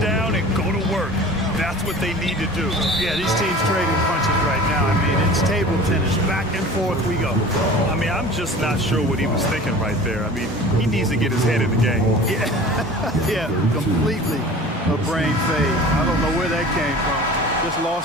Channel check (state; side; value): normal; both; correlation 0.41